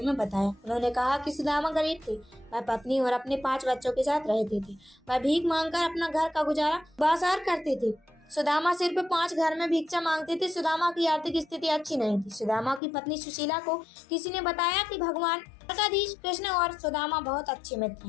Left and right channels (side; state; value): right; drops out; at 12.8 s